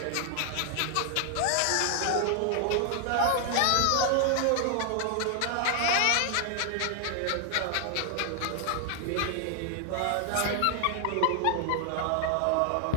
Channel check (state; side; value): different; both; correlation 0.00